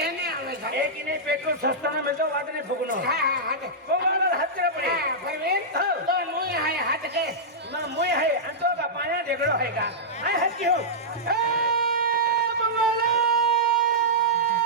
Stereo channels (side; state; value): both; normal; correlation -0.12